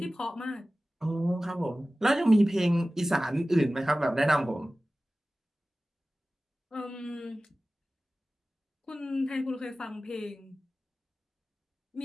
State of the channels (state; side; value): normal; both; correlation 0.96